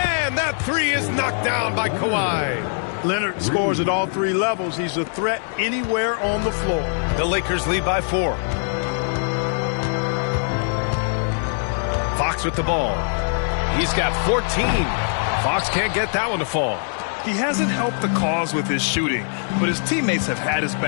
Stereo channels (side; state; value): right; silent; digital silence